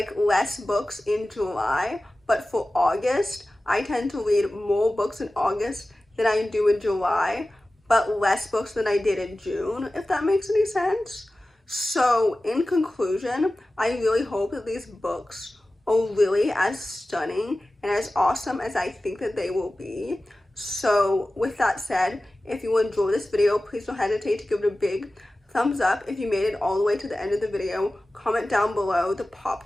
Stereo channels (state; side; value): normal; both; correlation 0.96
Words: less books in July, but for August, I tend to read more books in August than I do in July, but less books than I did in June, if that makes any sense. So in conclusion, I really hope that these books are really as stunning and as awesome as I think that they will be. So with that said, if you enjoyed this video, please don't hesitate to give it a big thumbs up. If you made it all the way to the end of the video, comment down below the